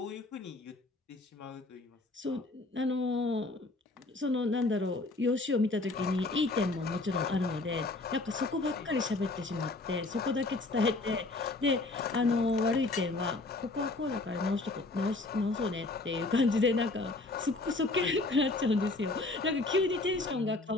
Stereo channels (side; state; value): right; quieter; 3.1 dB